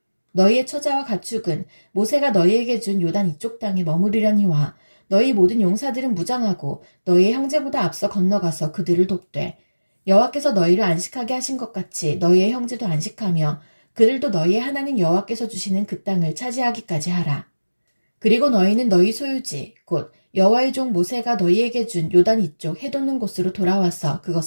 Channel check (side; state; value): both; inverted; correlation -1.00